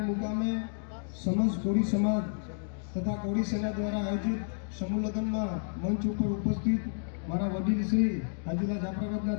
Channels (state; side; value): silent; right; digital silence